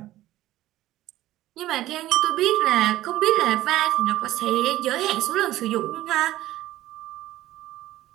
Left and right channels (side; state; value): left; quieter; 15.2 dB